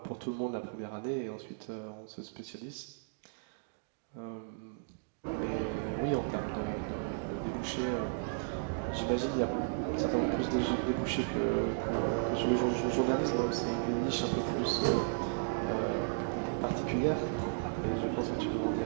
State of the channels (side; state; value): left; silent; digital silence